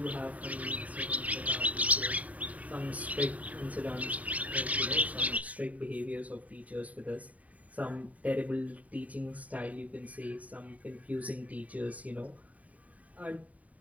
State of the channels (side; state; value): left; late; 0.070 ms